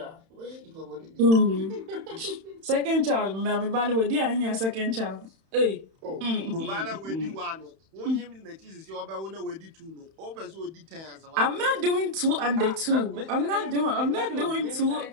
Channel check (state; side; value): late; left; 31 ms